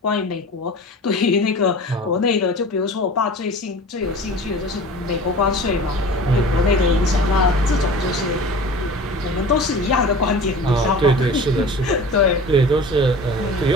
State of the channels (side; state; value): both; normal; correlation 0.39